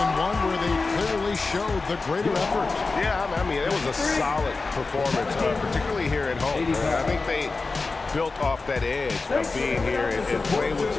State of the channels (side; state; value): right; quieter; 3.9 dB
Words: one where they clearly showed the greater effort. Yeah, I mean, it was a solid performance, particularly here at home. I think they built off that edge of being here and playing with